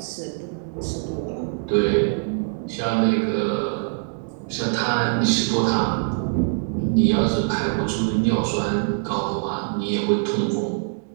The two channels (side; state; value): left; silent; digital silence